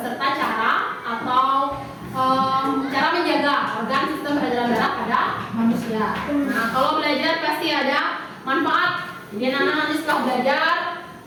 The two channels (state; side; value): identical; both; correlation 1.00